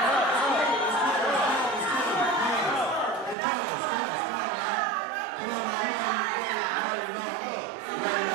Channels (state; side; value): drops out; left; at 3.4 s